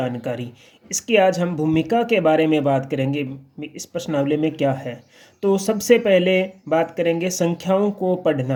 इसकी आज हम भूमिका के बारे में बात करेंगे। इस प्रश्नावली में क्या है, तो सबसे पहले बात करेंगे संख्याओं को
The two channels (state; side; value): identical; both; correlation 1.00